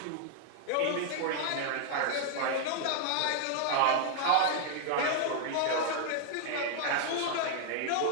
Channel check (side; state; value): both; different; correlation 0.00